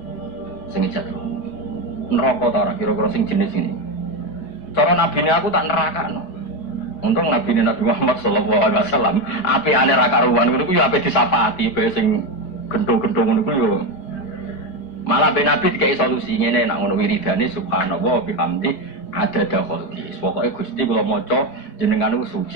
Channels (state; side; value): late; right; 4.7 ms